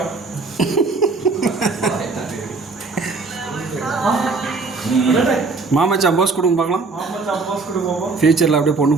மாமச்சான் போஸ் கொடுங்க பார்க்கலாம். ஃபியூச்சரில் அப்படியே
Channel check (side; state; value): left; quieter; 4.0 dB